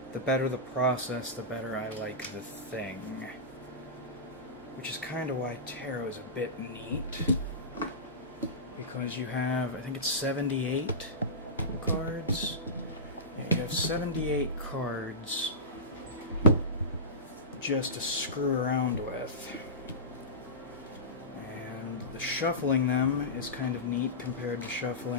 the better the process, the better I like the thing. Which is kind of why tarot is a bit neat. Because you have, I think it's 78 cards. Yeah, you have 78 cards just to screw around with. And the shuffling them is kind of neat compared to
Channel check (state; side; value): normal; both; correlation -0.18